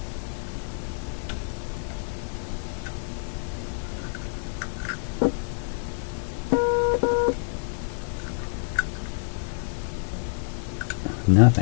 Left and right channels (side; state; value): right; silent; digital silence